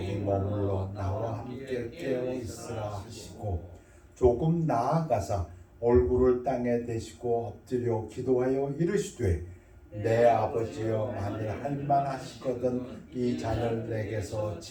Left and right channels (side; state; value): both; identical; correlation 1.00